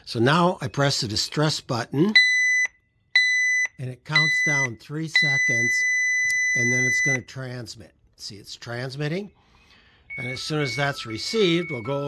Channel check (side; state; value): both; identical; correlation 1.00